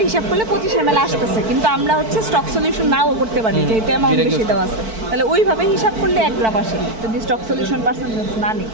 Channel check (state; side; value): late; left; 4.5 ms